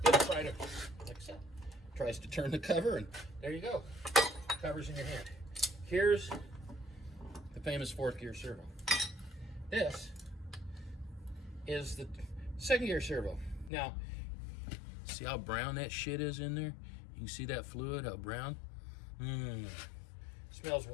It'll try to, like I said, tries to turn the cover, and there you go. Cover's in your hand. Here's the famous fourth gear servo. This is the second gear servo. Now, see how brown that shit is in there? You can see that fluid, how brown? Smells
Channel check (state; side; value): drops out; right; at 13.7 s